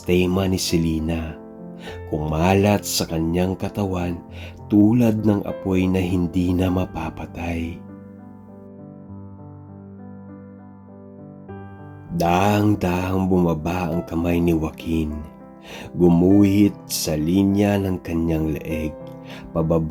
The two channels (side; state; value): both; identical; correlation 1.00